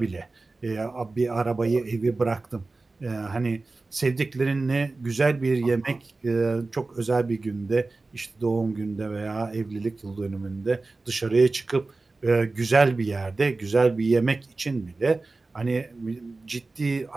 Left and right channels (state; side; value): quieter; left; 3.5 dB